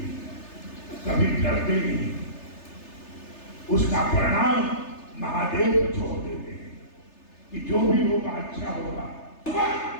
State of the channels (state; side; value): late; right; 3.3 ms